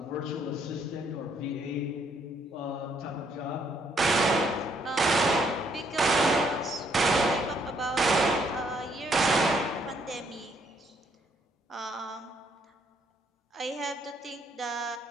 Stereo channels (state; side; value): normal; both; correlation 0.70